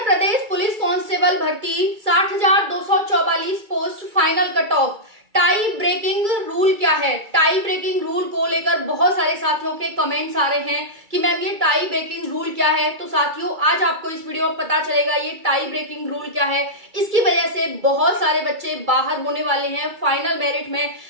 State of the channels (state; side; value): late; left; 2.3 ms